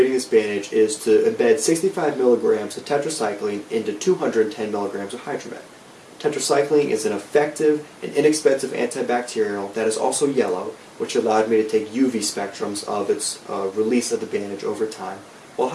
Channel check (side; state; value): both; identical; correlation 1.00